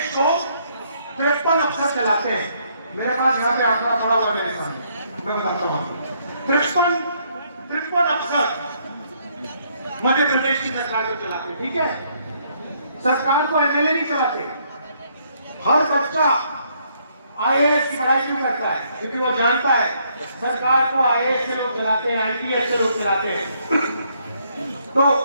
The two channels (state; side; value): inverted; both; correlation -0.70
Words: को 53 अफसर चलाते हैं। मेरे पास यहाँ पे आंकड़ा पड़ा हुआ मेरे सामने, मैं बताता हूँ। 53 अफसर मध्य प्रदेश की सरकार को चलाते हैं। ठीक है, सरकार को एमएलए नहीं चलाते। हर बच्चा आईएएस की पढ़ाई क्यों करता है? क्योंकि वो जानता है सरकार को आईएएस से लोग चलाते हैं, आईपीएस से लोग चलाते हैं। तो